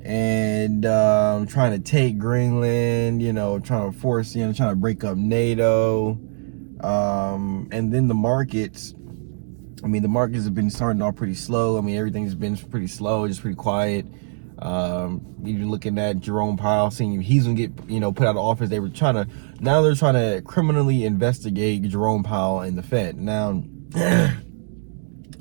and trying to take Greenland, you know, trying to break up NATO. And then the markets, I mean, the markets have been starting off pretty slow. I mean, everything's been pretty slow, just pretty quiet. Even looking at Jerome Powell, seeing he's gonna get, you know, put out of office. They're trying to criminally investigate Jerome Powell and the Fed. Now,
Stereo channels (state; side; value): silent; left; digital silence